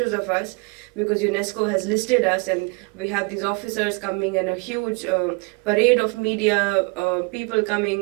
of us because UNESCO has listed us, and we have these officers coming and a huge parade of media people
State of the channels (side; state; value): left; quieter; 31.6 dB